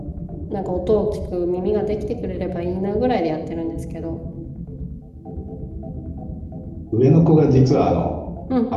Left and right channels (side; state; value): both; identical; correlation 1.00